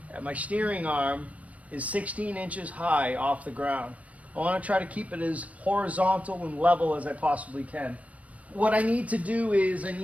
at my steering arm, is 16 inches high off the ground. I want to try to keep it as horizontal and level as I possibly can. What I need to do is I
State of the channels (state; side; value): late; left; 0.067 ms